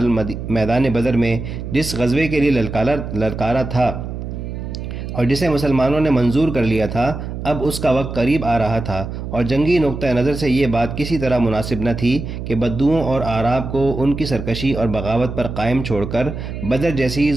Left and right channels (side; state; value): right; noise; hum, 7 dB below the sound